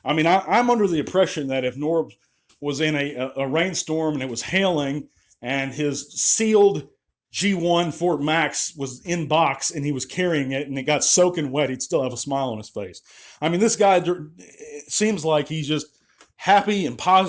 I mean, I'm under the impression that if Norbz was in a rainstorm and it was hailing and his sealed G1 Fort Max was in box and he was carrying it and it got soaking wet, he'd still have a smile on his face. I mean, this guy, it seems like he's just happy and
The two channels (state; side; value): identical; both; correlation 1.00